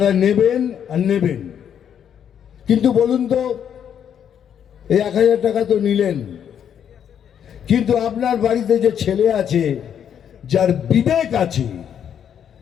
নেবেন আর নেবেন। কিন্তু বলুন তো, এই 1000 টাকা তো নিলেন, কিন্তু আপনার বাড়িতে যে ছেলে আছে, যার বিবেক আছে,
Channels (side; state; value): right; quieter; 8.8 dB